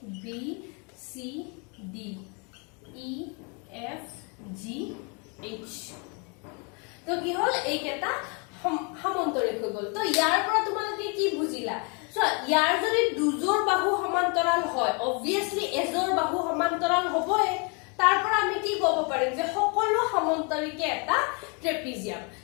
B C D E F G H, তো কি হ'ল? এইকেইটা সামন্তৰিক হৈ গ'ল। তো ইয়াৰ পৰা তোমালোকে কি বুজিলা? ইয়াৰ যদি দুজোৰ বাহু সমান্তৰাল হয়, অবভিয়াছলি এজোৰ বাহু সমান্তৰাল হ'বই। তাৰ পৰা আমি কি ক'ব পাৰিম? যে সকলো সামন্তৰিকে এটা ট্ৰেপিজিয়াম।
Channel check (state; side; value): quieter; right; 34.1 dB